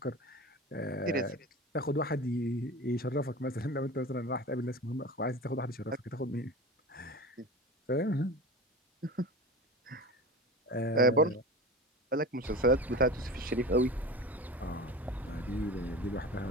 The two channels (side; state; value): both; normal; correlation 0.32